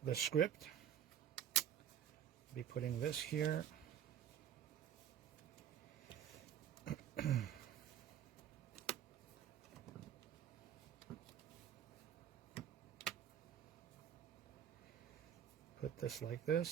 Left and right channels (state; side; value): quieter; left; 9.7 dB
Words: the script, be putting this here. Put this like